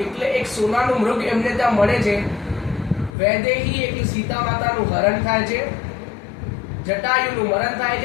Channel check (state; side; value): drops out; right; at 3.2 s